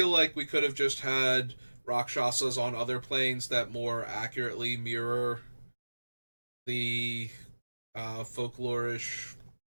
like we could have just had Rakshasas on other planes that more accurately mirror the folklorish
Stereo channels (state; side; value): inverted; both; correlation -1.00